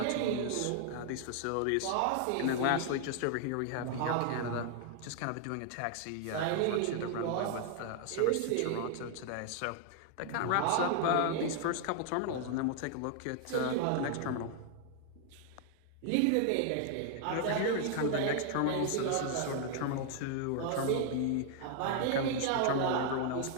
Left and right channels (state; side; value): different; both; correlation 0.00